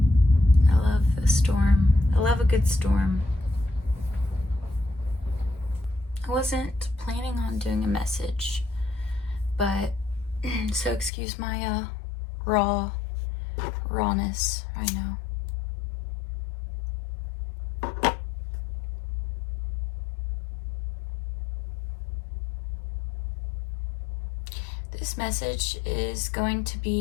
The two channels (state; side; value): drops out; right; at 11.1 s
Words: the storm. I love a good storm. I wasn't planning on doing a message, but so excuse my rawness right now. This message is going to